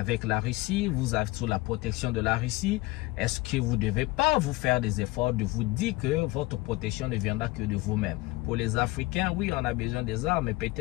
la Russie, vous êtes sous la protection de la Russie, est-ce que vous devez pas vous faire des efforts de vous dire que votre protection ne viendra que de vous-même? Pour les Africains, oui, on a besoin des armes, mais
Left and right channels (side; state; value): right; quieter; 20.5 dB